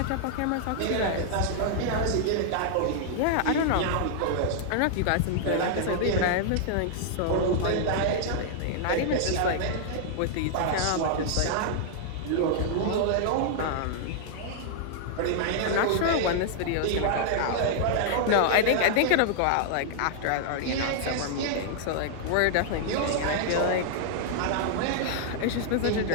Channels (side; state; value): both; different; correlation -0.01